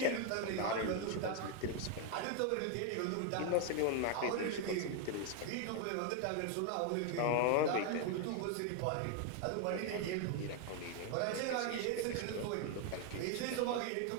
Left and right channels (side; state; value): both; different; correlation 0.01